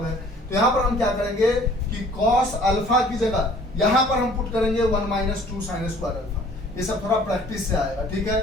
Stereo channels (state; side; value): normal; both; correlation 0.54